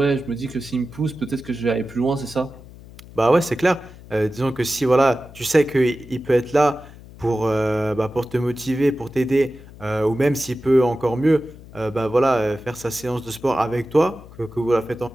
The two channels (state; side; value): noise; left; hum, 19 dB below the sound